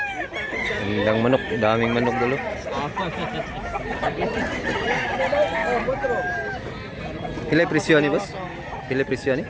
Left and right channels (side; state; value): both; identical; correlation 1.00